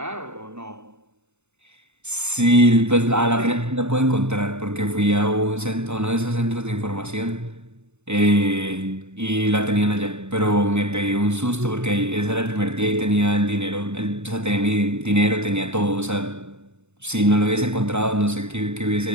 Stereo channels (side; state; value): left; late; 0.82 ms